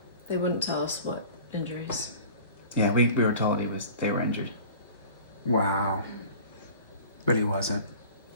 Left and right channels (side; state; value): both; inverted; correlation -0.43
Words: They wouldn't tell us what injuries. Yeah, we were told they were injured. Wow. But he wasn't.